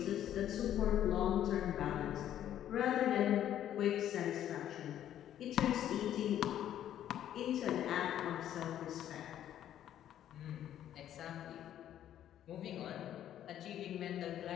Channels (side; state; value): right; quieter; 11.1 dB